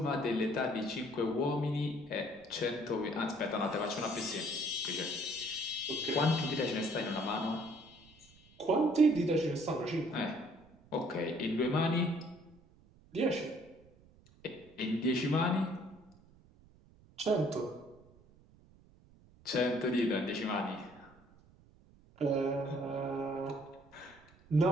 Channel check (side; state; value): right; noise; rumble, 27 dB below the sound